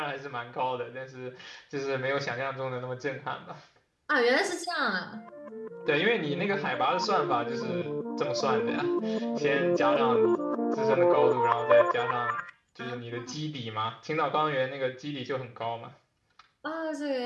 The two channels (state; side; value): identical; both; correlation 1.00